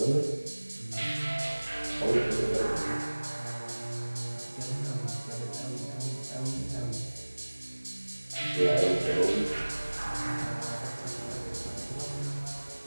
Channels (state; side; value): inverted; both; correlation -1.00